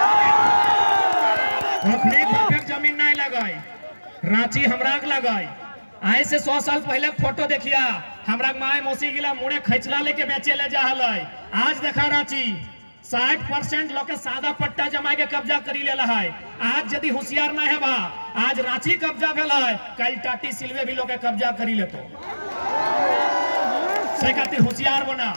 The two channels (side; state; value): both; inverted; correlation -1.00